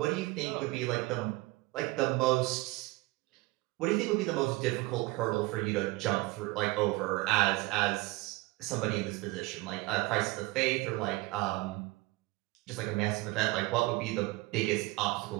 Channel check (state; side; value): quieter; left; 21.7 dB